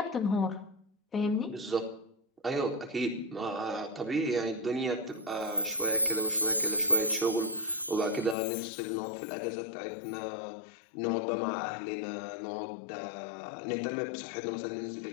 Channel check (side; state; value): right; drops out; at 8.3 s